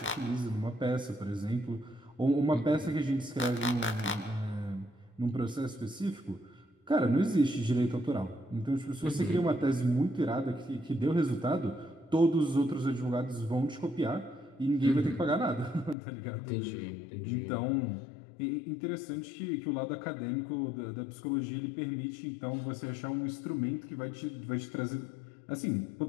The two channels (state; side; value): drops out; right; at 16.0 s